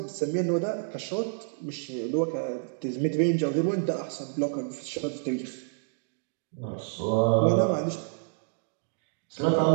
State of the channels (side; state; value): left; silent; digital silence